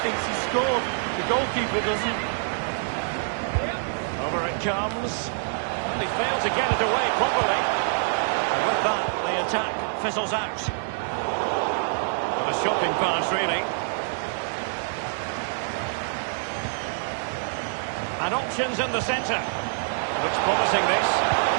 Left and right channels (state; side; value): silent; left; digital silence